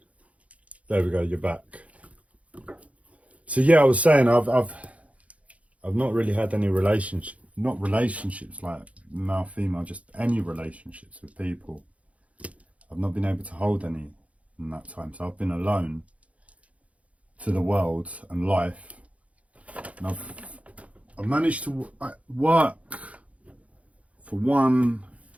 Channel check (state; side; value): late; left; 0.065 ms